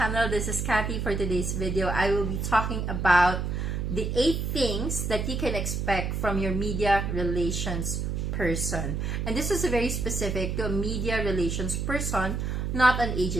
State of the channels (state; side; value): noise; right; hum, 1 dB below the sound